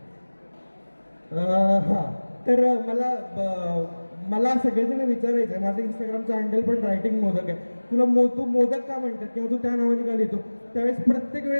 हां, तर मला मला सगळेजण विचारायचे, माझं इंस्टाग्रामचं हँडल पण रायटिंग मोदक आहे, तुला तू मोदक का म्हणतात किंवा तू त्या नावाने का लिहितो? त्यावेळेस प्रत्येक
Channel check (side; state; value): both; inverted; correlation -1.00